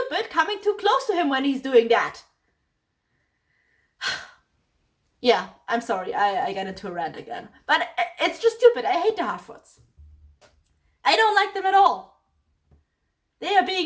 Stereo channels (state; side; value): identical; both; correlation 1.00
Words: coming too close to him when he's doing that. Yeah, I'm sorry. I got into a rant again. But it's just stupid. I hate the Harfoots. I don't like them at all. They are